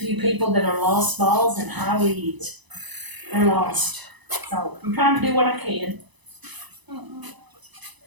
people that are lost balls and high weeds. They're lost. So I'm trying to do what I can.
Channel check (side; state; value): left; late; 1.0 ms